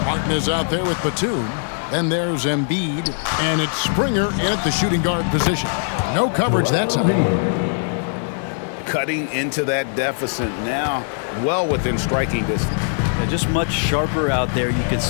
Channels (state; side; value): silent; right; digital silence